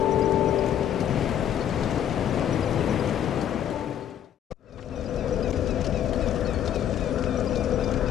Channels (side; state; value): right; quieter; 10.1 dB